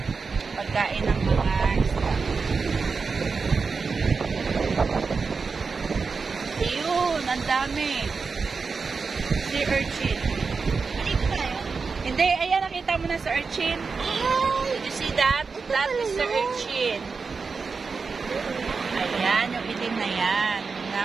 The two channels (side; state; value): left; quieter; 4.8 dB